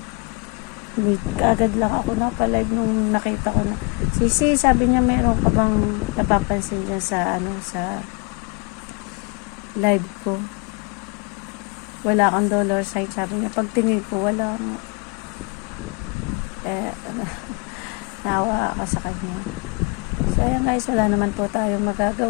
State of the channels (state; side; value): quieter; right; 30.7 dB